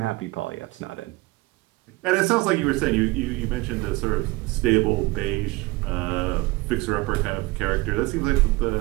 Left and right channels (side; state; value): left; quieter; 22.3 dB